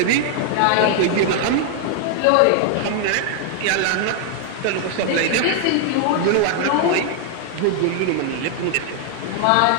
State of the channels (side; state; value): both; different; correlation 0.00